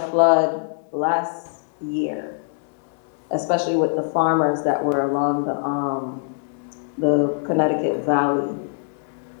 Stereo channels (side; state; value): right; silent; 64 dB below the other